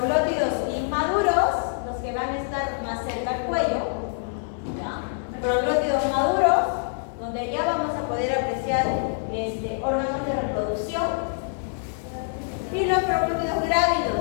inmaduros, los que van a estar más cerca al cuello. ¿Ya? Proglótidos maduros, donde ya vamos a poder apreciar órganos de reproducción. Y los proglótidos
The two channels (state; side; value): silent; right; digital silence